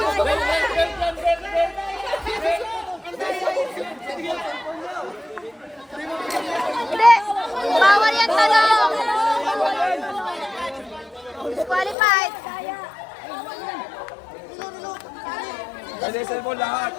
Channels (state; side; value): drops out; right; at 12.0 s